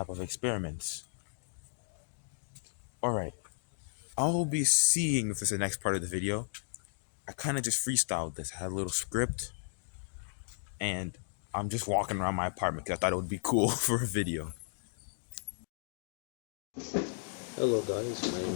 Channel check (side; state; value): right; silent; digital silence